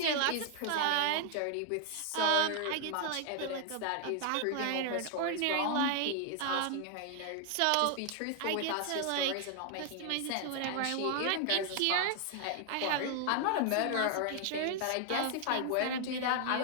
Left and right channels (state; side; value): different; both; correlation 0.00